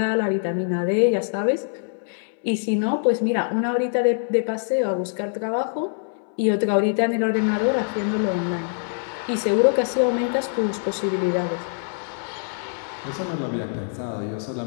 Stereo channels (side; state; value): right; silent; digital silence